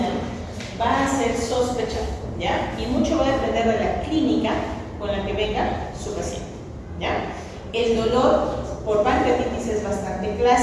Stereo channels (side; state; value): both; identical; correlation 1.00